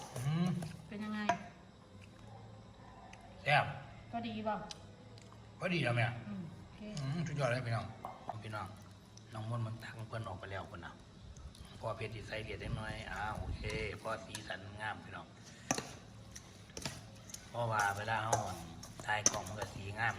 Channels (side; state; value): both; identical; correlation 1.00